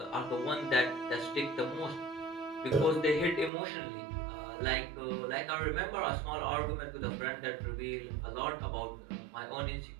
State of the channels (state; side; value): drops out; left; at 3.5 s